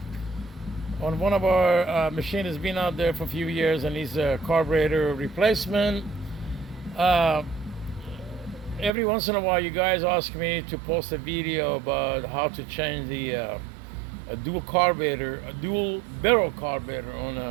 on one of our machines that's been out there for a few years and needs a carburetor replacement. Every once in a while you guys ask me to post a video about how to change a dual barrel carburetor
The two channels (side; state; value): left; drops out; at 8.9 s